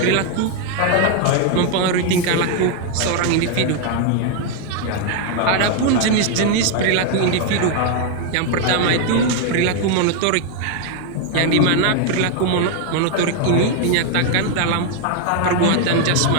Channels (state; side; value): different; both; correlation 0.01